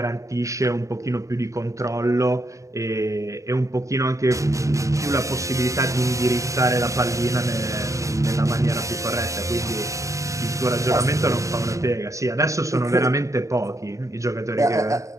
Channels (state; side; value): late; left; 0.15 ms